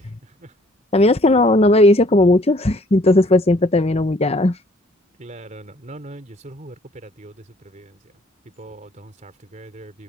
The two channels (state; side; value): normal; both; correlation 0.60